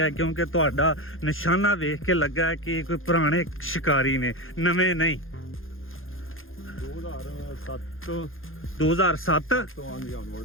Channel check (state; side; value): late; right; 0.60 ms